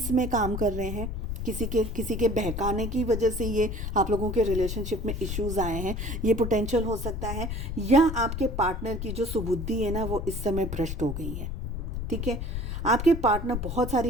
में काम कर रहे हैं, किसी के बहकाने की वजह से ये आप लोगों के रिलेशनशिप में इश्यूज़ आए हैं, ये पोटेंशियल हो सकता है। या आपके पार्टनर की जो सुबुद्धि है ना वो इस समय भ्रष्ट हो गई है। ठीक है, आपके पार्टनर बहुत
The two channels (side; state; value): left; noise; rumble, 4 dB below the sound